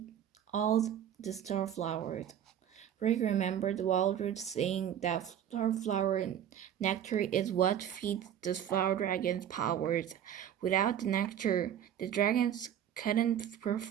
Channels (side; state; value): left; quieter; 9.9 dB